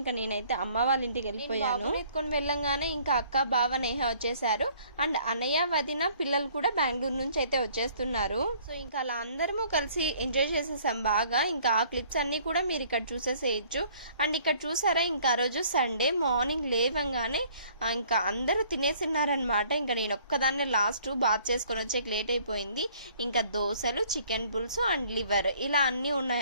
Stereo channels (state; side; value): inverted; both; correlation -0.58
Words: నేనైతే అమ్మ వాళ్ళ ఇంటికి వెళ్ళిపోయాను. ఎత్తుకొని వెళ్ళంగానే ఇంకా అక్క బావ నేహ వచ్చేసారు. అండ్ అన్నయ్య వదిన పిల్లలు కూడా బెంగళూరు నుంచి అయితే వచ్చేస్తున్నారు. సో ఇంకా అలా అందరము కలిసి ఎంజాయ్ చేసేసాం బాగా. ఇంకా ఆ క్లిప్స్ అన్ని కూడా మీరు ఇక్కడ చూసేసేయచ్చు. అండ్ ఇక్కడ చూసారా, ఇంకా ఆ రోజు సండే మార్నింగ్ లేవంగానే ఇంకా అందరూ తినేసిన్నారనమాట. ఇంకా నేను ఒక్కదాన్నే లాస్ట్ బాత్ చేసుకొని వచ్చేకి లేట్ అయిపోయింది. ఇంకా దోశలు, చికెన్ పుల్స్ అండ్ లివర్ ఇలా అన్ని